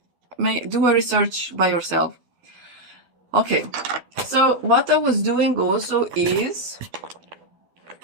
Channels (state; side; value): late; left; 12 ms